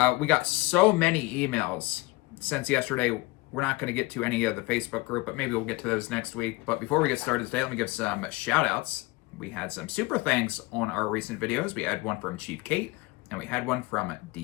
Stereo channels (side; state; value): right; quieter; 22.4 dB